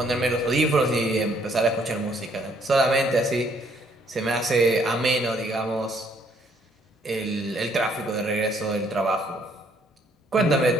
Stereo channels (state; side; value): normal; both; correlation 0.66